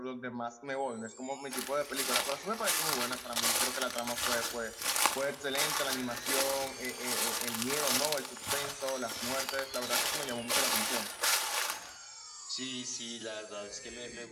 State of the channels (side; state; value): both; identical; correlation 1.00